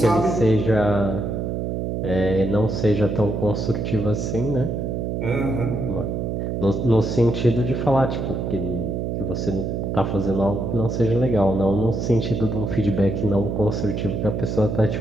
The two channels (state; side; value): noise; right; hum, 2 dB below the sound